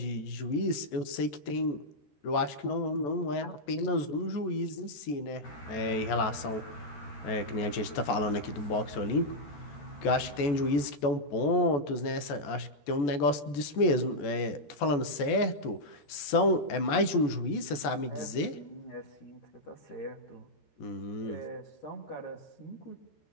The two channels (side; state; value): right; late; 14 ms